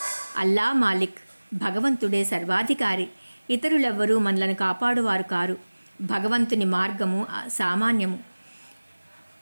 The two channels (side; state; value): both; inverted; correlation -1.00